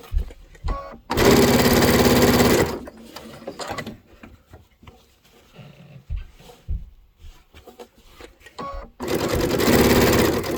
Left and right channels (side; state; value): both; identical; correlation 1.00